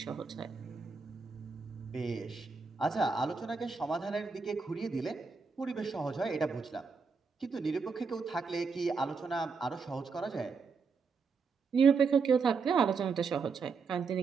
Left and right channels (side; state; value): left; quieter; 5.0 dB